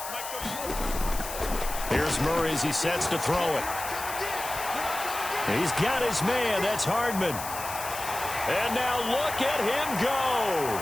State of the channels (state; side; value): noise; left; hiss, 9 dB below the sound